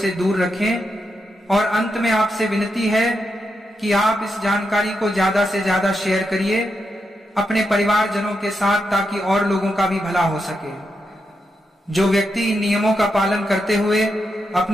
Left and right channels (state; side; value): normal; both; correlation 0.85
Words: दूर रखें। और अंत में आपसे विनती है कि आप इस जानकारी को ज्यादा से ज्यादा शेयर करिए अपने परिवारजनों के साथ, ताकि और लोगों का भी भला हो सके। जो व्यक्ति इन नियमों का पालन करते हुए